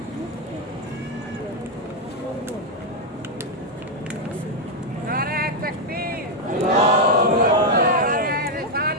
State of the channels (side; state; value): both; normal; correlation 0.02